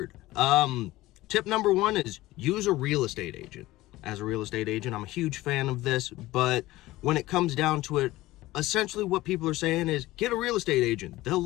Tip number 1 is use a real estate agent. As a real estate agent, I'm a huge fan of this, but when it comes down to it, essentially what people are saying is get a real estate agent. They'll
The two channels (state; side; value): quieter; right; 17.7 dB